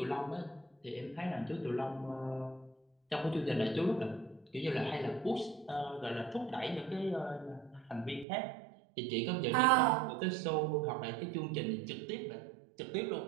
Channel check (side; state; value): left; drops out; at 8.2 s